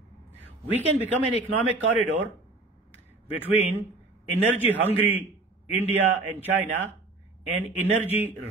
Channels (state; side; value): quieter; left; 3.1 dB